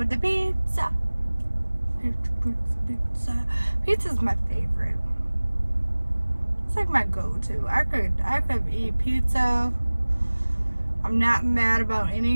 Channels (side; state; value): both; inverted; correlation -1.00